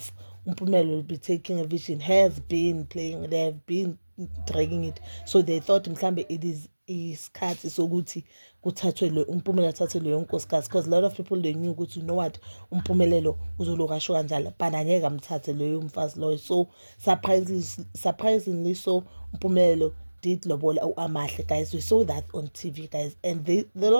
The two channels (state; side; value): inverted; both; correlation -1.00